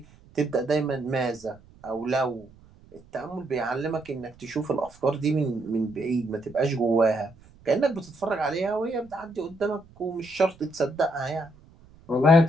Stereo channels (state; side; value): noise; right; rumble, 25 dB below the sound